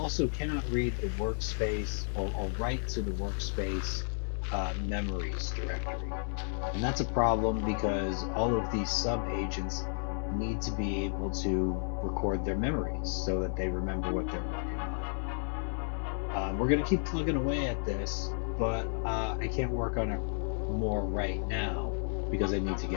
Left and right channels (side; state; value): right; silent; 56 dB below the other